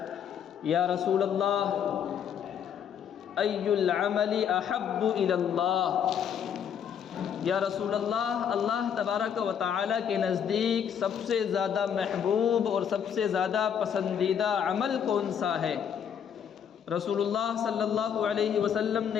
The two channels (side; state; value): right; quieter; 8.2 dB